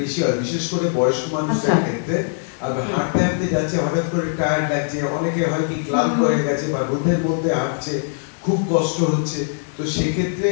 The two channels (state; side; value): silent; right; digital silence